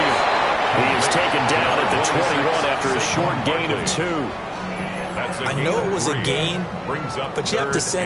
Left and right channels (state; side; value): identical; both; correlation 1.00